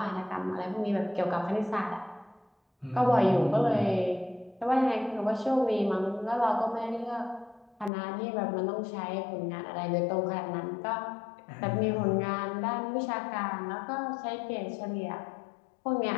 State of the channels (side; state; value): right; drops out; at 7.9 s